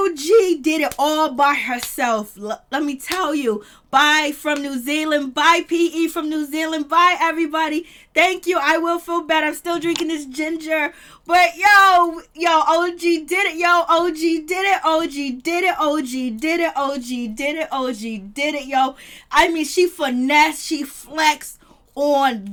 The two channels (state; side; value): identical; both; correlation 1.00